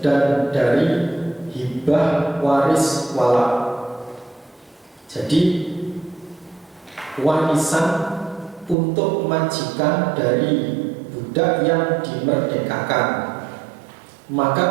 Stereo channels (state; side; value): drops out; left; at 8.8 s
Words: dan dari hibah waris walad. Jadi warisan untuk majikan dari budak yang dimerdekakan. Maka